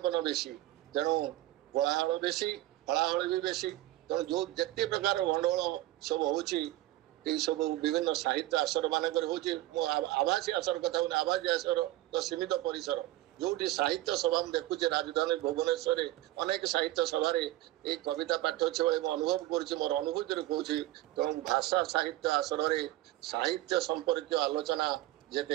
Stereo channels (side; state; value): left; quieter; 16.0 dB